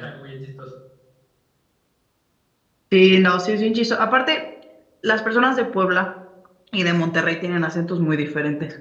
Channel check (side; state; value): both; identical; correlation 1.00